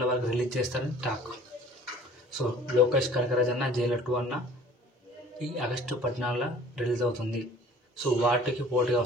వరకు రిలీజ్ చేస్తారని టాక్. సో లోకేష్ కనకరాజ్ అన్న జైలర్ 2 అన్న ఈ ఆగస్టు 14లో రిలీజ్ అవుతుంది. సో వాటికి పోటీగా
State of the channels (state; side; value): normal; both; correlation 0.49